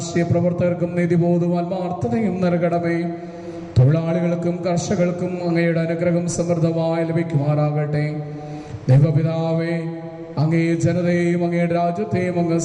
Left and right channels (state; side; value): identical; both; correlation 1.00